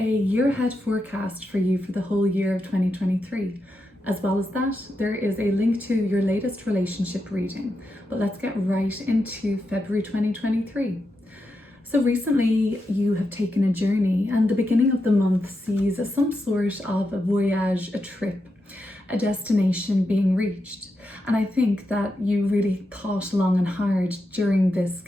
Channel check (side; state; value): both; normal; correlation 0.86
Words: year ahead forecast for you for the whole year of 2023. As well as that, there is a link to your latest relationship reading. But let's get right into February 2023. So recently you have taken a journey, and the beginning of the month sees some sort of a voyage, a trip, a destination being reached. And I think that you really thought long and hard during this